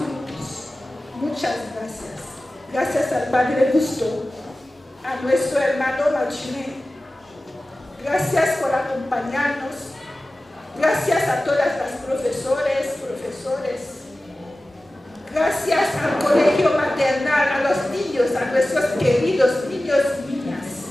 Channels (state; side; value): normal; both; correlation 0.96